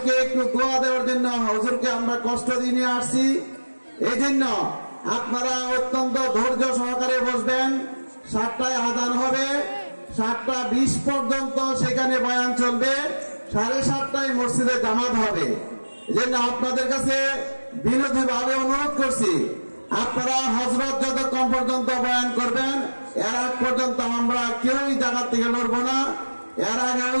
একটু দোয়া দেওয়ার জন্য হুজুরকে আমরা কষ্ট দিয়ে নিয়ে আসছি। এই জন্য আপনারা অত্যন্ত ধৈর্য সহকারে বসবেন। 7টায় আযান হবে, 7টা 20 পর্যন্ত সেখানে বয়ান চলবে, 7:30টায় মসজিদে জামাত হবে। এজন্য আপনাদের কাছে বিনম্রভাবে অনুরোধ করছি, আপনারা হযরত যতক্ষণ পর্যন্ত বয়ান করবেন এর আগ পর্যন্ত আমরা কেউই জায়গা থেকে লড়ব না। এর আগে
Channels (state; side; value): inverted; both; correlation -1.00